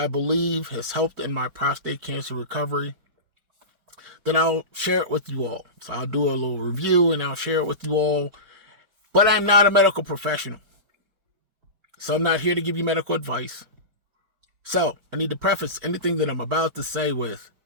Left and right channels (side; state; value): left; late; 4.5 ms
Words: believe has helped in my prostate cancer recovery, then I'll share it with you all. So I'll do a little review and I'll share it with you all. But I'm not a medical professional. So I'm not here to give you medical advice. So I need to preface anything that I'm about to say with,